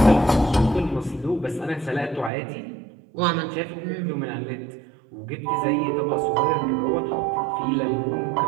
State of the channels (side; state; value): left; drops out; at 2.3 s